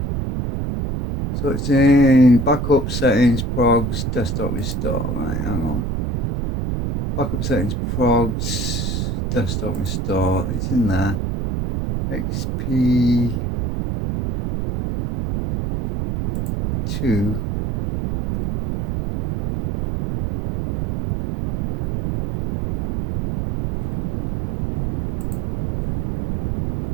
So it's in backup settings, progs, desktop restore. Right, hang on. Backup settings, progs, desktop restore. It's in there. XP2.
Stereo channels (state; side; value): noise; right; rumble, 2 dB below the sound